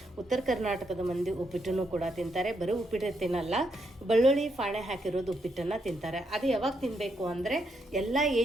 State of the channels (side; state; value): both; normal; correlation 0.79